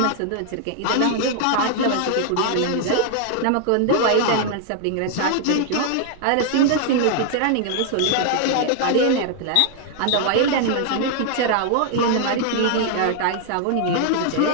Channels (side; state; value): both; different; correlation 0.00